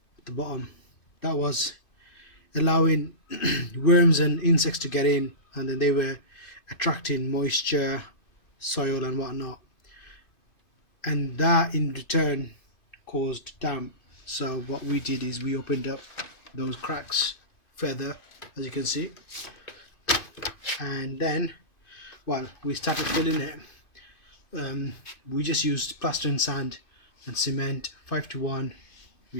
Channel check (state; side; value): late; right; 2.5 ms